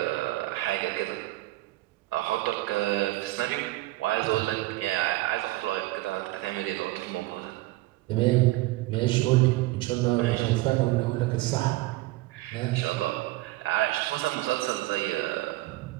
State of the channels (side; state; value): left; quieter; 18.7 dB